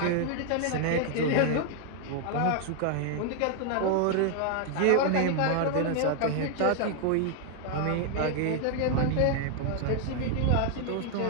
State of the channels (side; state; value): both; different; correlation 0.00